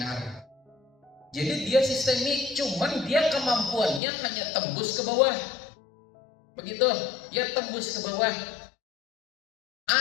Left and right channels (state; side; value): drops out; right; at 4.0 s